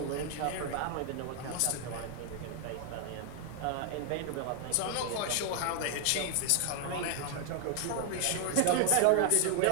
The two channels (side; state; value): both; different; correlation 0.00